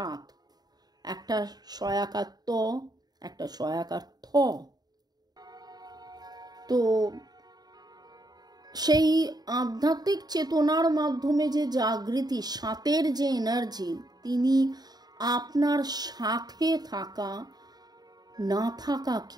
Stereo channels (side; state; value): left; late; 0.19 ms